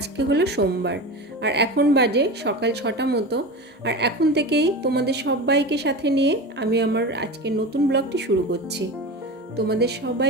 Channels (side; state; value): both; normal; correlation 0.27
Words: হলো সোমবার আর এখন বাজে সকাল 6টা মতো। আর এখন থেকেই তোমাদের সবাইকে সাথে নিয়ে আমি আমার আজকের নতুন ব্লগটি শুরু করছি। তোমাদের